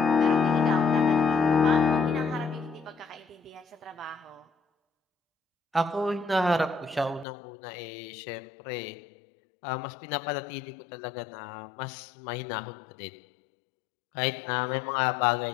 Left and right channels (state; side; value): drops out; right; at 7.2 s